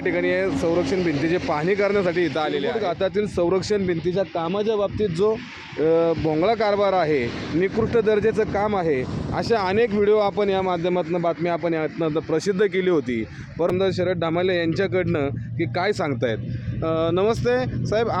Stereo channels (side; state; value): both; identical; correlation 1.00